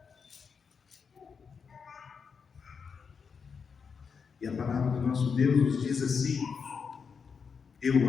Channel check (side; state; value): right; quieter; 5.9 dB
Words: E a palavra do nosso Deus nos diz assim: eu